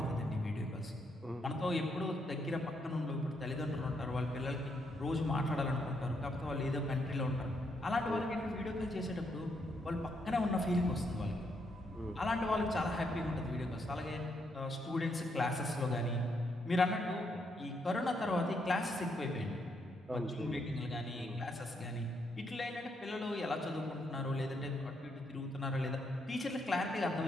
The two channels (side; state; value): both; normal; correlation 0.77